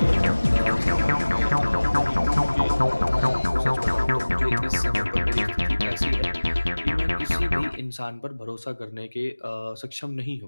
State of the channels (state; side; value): inverted; both; correlation -1.00